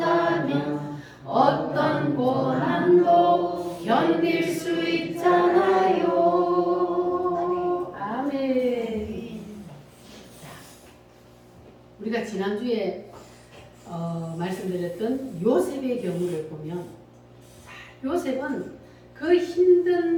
견딜 수 있잖아요. 아멘. 우리가 지난주에 말씀드렸던 요셉의 경우를 보면, 요셉은 그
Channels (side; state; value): both; identical; correlation 1.00